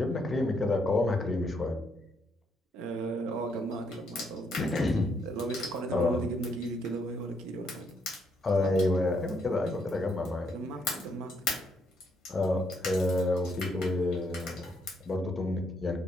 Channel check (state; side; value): normal; both; correlation 0.73